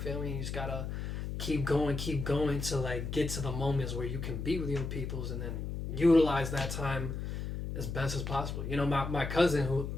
me? You just gotta keep going to like get to the moments where you can be with your peoples, and then utilize that time as best as possible. You know, my cousin who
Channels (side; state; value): left; noise; hum, 4 dB below the sound